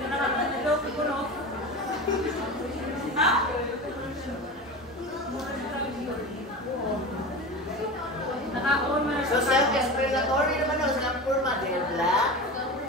So, self-explanatory naman ang silang forma. They're black,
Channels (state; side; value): normal; both; correlation 0.29